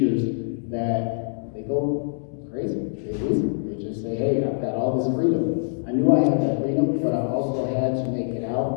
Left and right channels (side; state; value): right; silent; digital silence